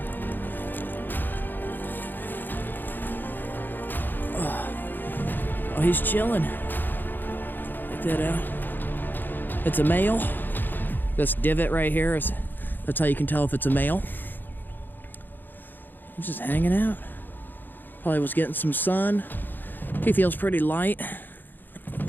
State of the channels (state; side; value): late; right; 0.091 ms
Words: Oh, he's chilling. Check that out. It's a male. This divot right here that's how you can tell if it's a male. He's just hanging out. Probably was getting some sun. He feels pretty light. You